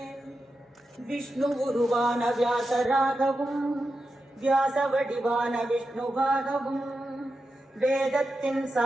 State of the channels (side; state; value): both; normal; correlation 0.89